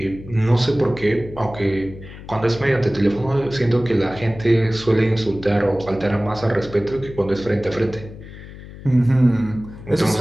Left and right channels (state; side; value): noise; left; hum, 15 dB below the sound